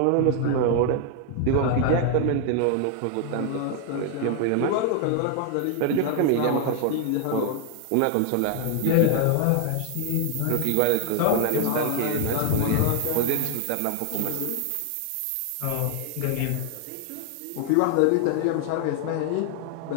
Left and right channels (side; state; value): both; different; correlation 0.00